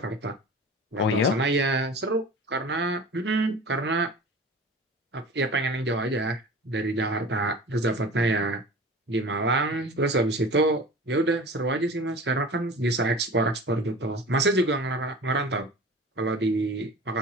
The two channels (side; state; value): both; normal; correlation 0.38